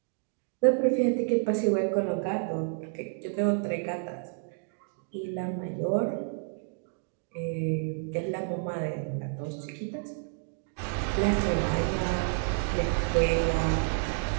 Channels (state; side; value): silent; left; 58 dB below the other